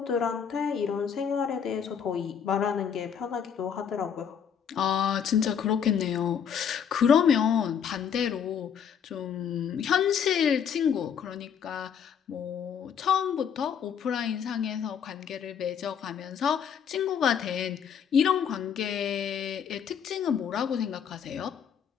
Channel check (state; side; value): quieter; right; 7.7 dB